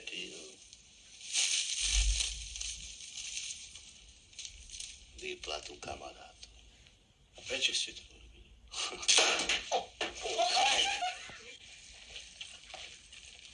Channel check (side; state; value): both; identical; correlation 1.00